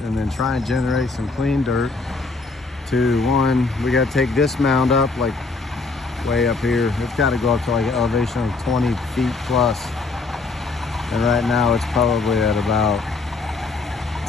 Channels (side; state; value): right; quieter; 3.8 dB